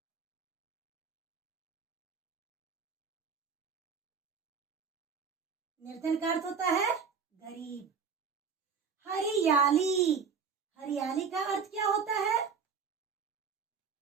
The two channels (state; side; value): quieter; left; 6.0 dB